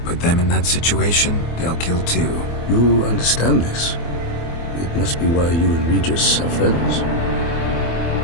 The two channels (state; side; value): late; right; 24 ms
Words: Put them in that situation, they'll kill too. You understand this. It must be why you and Regis are friends.